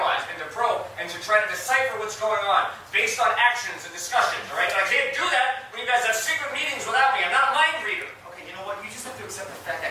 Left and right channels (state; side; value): identical; both; correlation 1.00